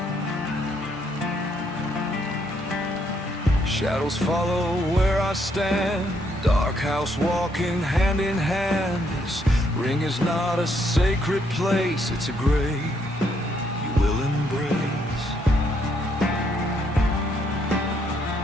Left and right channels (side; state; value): both; normal; correlation 0.72